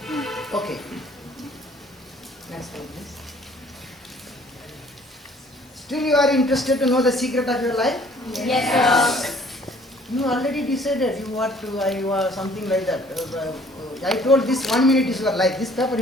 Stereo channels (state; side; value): normal; both; correlation 0.57